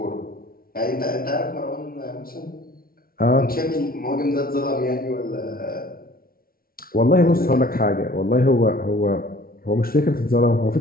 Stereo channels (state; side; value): late; right; 0.43 ms